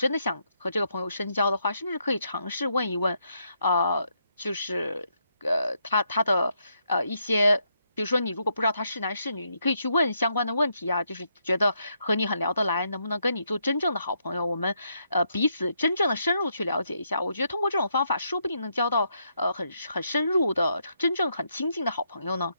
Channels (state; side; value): inverted; both; correlation -0.78